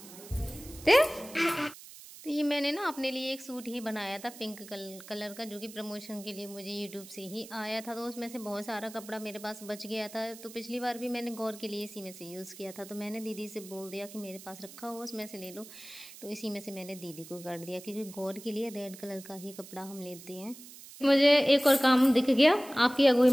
तो ये मैंने ना अपने लिए एक सूट ही बनाया था पिंक कलर का, जो कि प्रमोशन के लिए मुझे यूट्यूब से ही आया था। तो उसमें से बहुत सारा कपड़ा मेरे पास बच गया था, तो पिछली बार भी मैंने गौर के लिए इसी में से यूज़ किया था। तो मैंने दीदी से बोल दिया कि मेरे पास रखा हो उसमें से ले लो, तो इसी में से मैंने दीदी को कर दिया, क्योंकि गौर के लिए रेड कलर का ही कपड़ा हम लेते हैं। मुझे एक और काम दिख गया आपकी अगुई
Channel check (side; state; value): right; noise; hiss, 17 dB below the sound